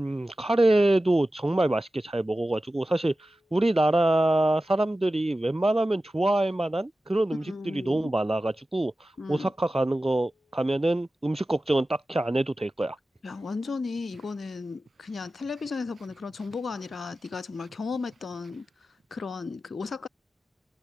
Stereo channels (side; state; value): both; normal; correlation 0.94